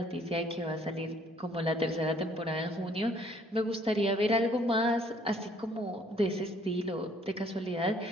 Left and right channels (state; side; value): normal; both; correlation 0.61